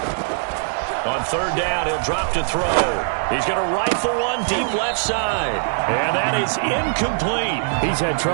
On 3rd down, he'll drop to throw. He's going to rifle one deep left side. And that is incomplete. He's had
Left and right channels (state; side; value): silent; left; digital silence